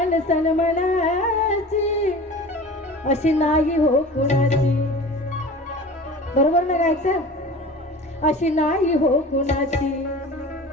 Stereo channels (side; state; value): both; normal; correlation 0.38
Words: सन्मानाची अशी नाही हो कुणाची. बरोबर ना गायचं? अशी नाही हो कुणाची.